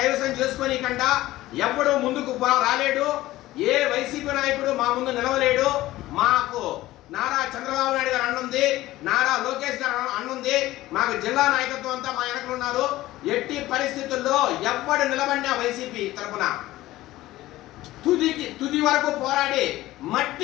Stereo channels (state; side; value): quieter; right; 16.5 dB